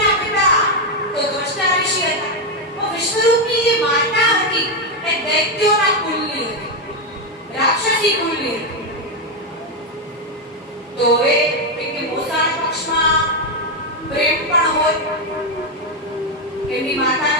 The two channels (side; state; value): both; normal; correlation 0.05